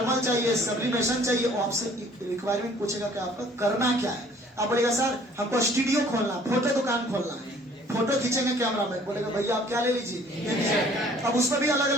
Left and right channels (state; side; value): normal; both; correlation 0.55